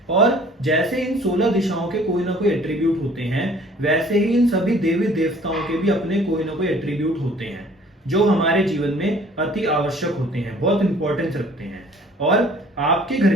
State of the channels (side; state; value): both; normal; correlation 0.53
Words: और जैसे इन 16 दिशाओं के कोई ना कोई एट्रीब्यूट होते हैं, वैसे ही इन सभी देवी देवताओं के भी अपने कोई ना कोई एट्रीब्यूट होते हैं जो हमारे जीवन में अति आवश्यक होते हैं, बहुत इंपॉर्टेंस रखते हैं। और आपके